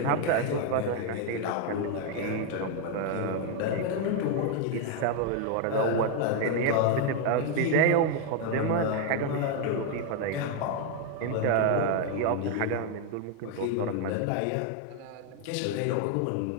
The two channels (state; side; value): different; both; correlation 0.01